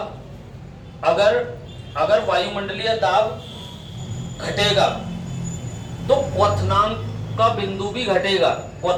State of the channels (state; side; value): identical; both; correlation 1.00